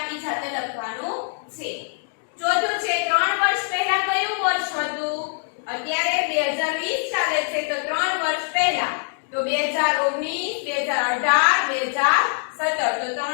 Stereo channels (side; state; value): right; silent; 63 dB below the other